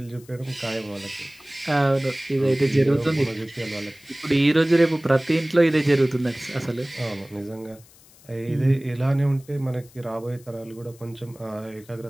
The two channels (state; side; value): noise; left; hiss, 26 dB below the sound